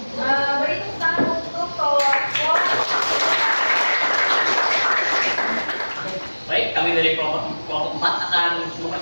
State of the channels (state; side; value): inverted; both; correlation -1.00